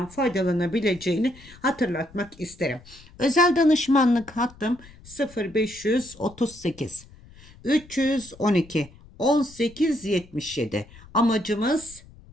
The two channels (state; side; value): noise; left; rumble, 22 dB below the sound